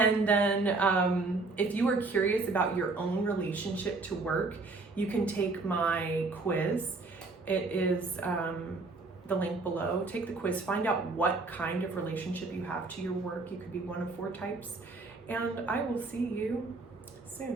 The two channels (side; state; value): left; quieter; 3.6 dB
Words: then if you are curious about your own relationship to work, you can take my quiz. It is the link below. Take the quiz, find out what kind of relationship you have to your work. You could be one of 4 types. And I will see you